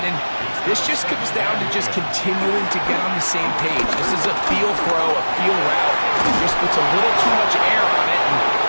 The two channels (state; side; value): inverted; both; correlation -1.00